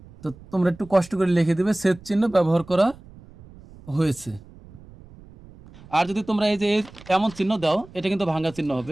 তো তোমরা একটু কষ্ট করে লিখে দেবে ছেদ চিহ্ন ব্যবহার করা হয়েছে। আর যদি তোমরা এই যে এমন চিহ্ন দাও এটা কিন্তু ভাঙ্গা চিহ্ন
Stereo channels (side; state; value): right; noise; rumble, 21 dB below the sound